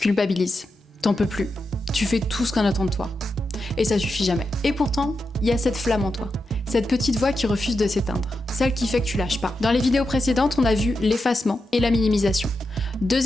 culpabilises, t'en peux plus, tu fais tout ce qu'on attend de toi. Et ça suffit jamais. Et pourtant, il y a cette flamme en toi. Cette petite voix qui refuse de s'éteindre. Celle qui fait que tu lâches pas. Dans les vidéos précédentes, on a vu l'effacement et la minimisation.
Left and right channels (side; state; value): both; normal; correlation 0.88